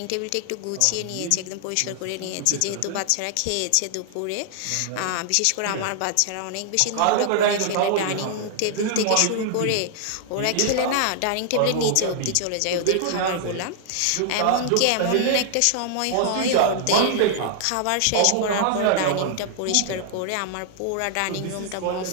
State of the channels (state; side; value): different; both; correlation -0.01